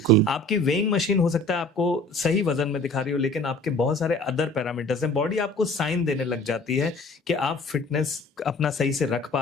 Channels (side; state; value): both; normal; correlation 0.48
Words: आपकी वेइंग मशीन हो सकता है आपको सही वजन में दिखा रही हो, लेकिन आपके बहुत सारे अदर पैरामीटर्स हैं। बॉडी आपको साइन देने लग जाती है कि आप फिटनेस अपना सही से रख